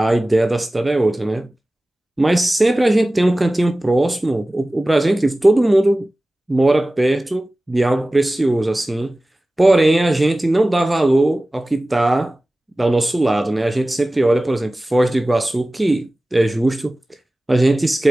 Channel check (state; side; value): normal; both; correlation 0.97